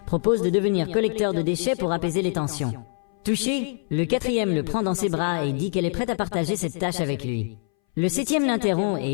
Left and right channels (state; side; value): silent; right; 60 dB below the other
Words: propose de devenir collecteur de déchets pour apaiser les tensions. Touché, le 4e le prend dans ses bras et dit qu'elle est prête à partager cette tâche avec lui. Le 7e l'interrompt